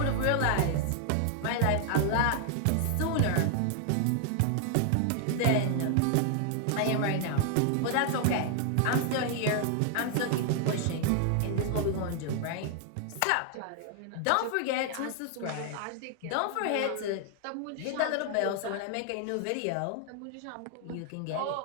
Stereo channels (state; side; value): different; both; correlation 0.00